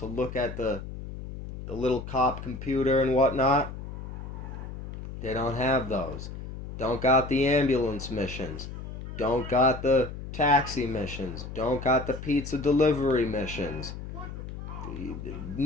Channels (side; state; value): left; noise; hum, 9 dB below the sound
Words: look at the little cop computer and whatnot. They don't have those. Don't got the ambulance missions. Don't got the taxi missions. Don't got the pizza delivery missions.